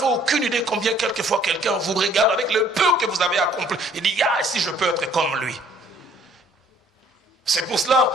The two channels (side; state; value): both; normal; correlation 0.59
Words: aucune idée combien quelquefois quelqu'un vous regarde avec le peu que vous avez accompli et dit, ah, si je peux être comme lui. C'est pour cela,